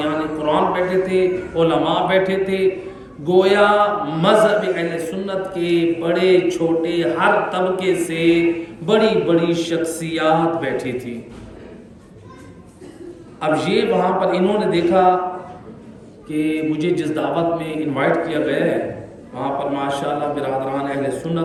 قرآن بیٹھے تھے، علماء بیٹھے تھے، گویا مذہب اہل سنت کے بڑے چھوٹے ہر طبقے سے بڑی بڑی شخصیات بیٹھی تھی۔ اب یہ وہاں پر انہوں نے دیکھا کہ مجھے جس دعوت میں انوائٹ کیا گیا ہے وہاں پر ماشاءاللہ برادران اہل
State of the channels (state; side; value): identical; both; correlation 1.00